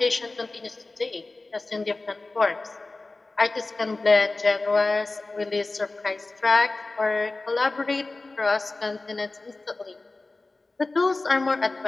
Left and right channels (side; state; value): right; quieter; 3.3 dB